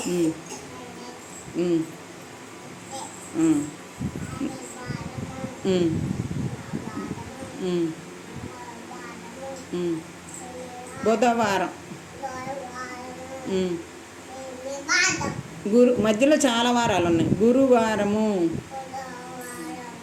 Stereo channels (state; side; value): identical; both; correlation 1.00